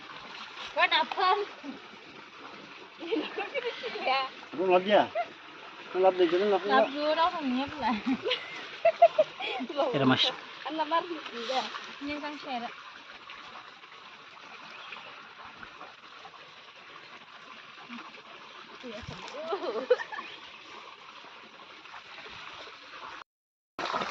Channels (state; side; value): identical; both; correlation 1.00